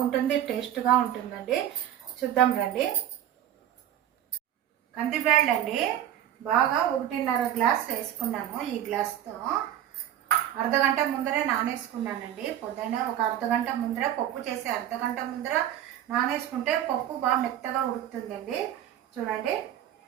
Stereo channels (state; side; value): quieter; left; 11.3 dB